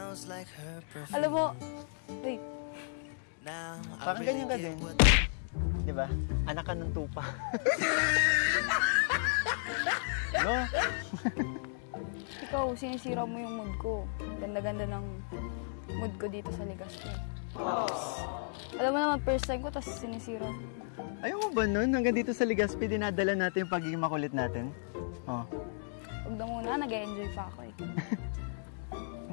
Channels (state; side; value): silent; right; digital silence